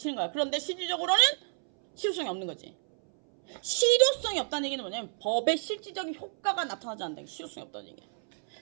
거야. 그런데 실질적으로는 실효성이 없는 거지. 실효성이 없다는 얘기는 뭐냐면 법의 실질적인 효과가 나타나지 않는다. 실효성이 없다는 얘기야.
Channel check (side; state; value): left; silent; 58 dB below the other